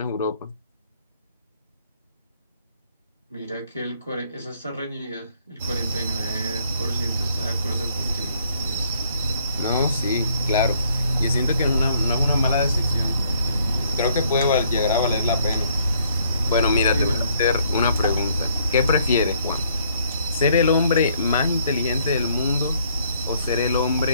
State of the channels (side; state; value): both; inverted; correlation -0.66